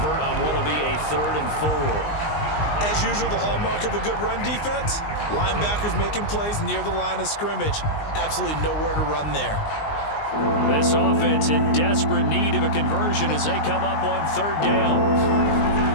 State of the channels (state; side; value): late; right; 19 ms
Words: on what will be a 3rd and 4. As usual, the hallmark of a good run defense, linebackers making plays near the line of scrimmage. Absolutely nowhere to run there. This offense in desperate need of a conversion as they come up on 3rd down.